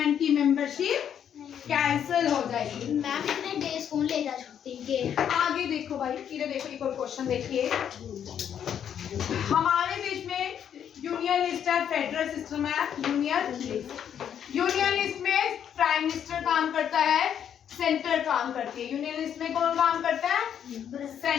की मेंबरशिप कैंसिल हो जाएगी। मैम इतने डेज कौन ले जा छुट्टी के? आगे देखो भाई, इधर देखो एक और क्वेश्चन देखिए। हमारे देश में यूनियन लिस्ट है, फेडरल सिस्टम है, यूनियन लिस्ट में प्राइम मिनिस्टर काम करता है, सेंटर काम करती है। यूनियन लिस्ट में कौन काम करता है?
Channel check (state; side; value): quieter; right; 9.0 dB